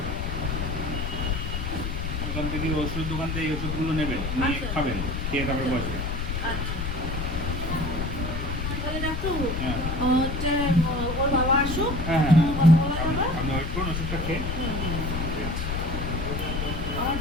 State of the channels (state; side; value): noise; left; rumble, 3 dB below the sound